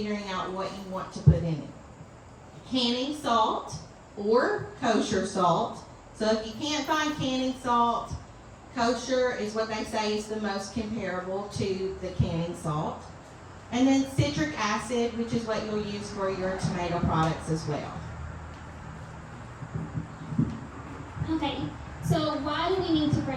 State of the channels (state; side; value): identical; both; correlation 1.00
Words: out what you want to put in it. Canning salt or kosher salt. So if you can't find canning salt, kosher is what they say is the most comparable to the canning salt. And then citric acid, which is what you'll use for your tomato products as well. Okay, so why do we need to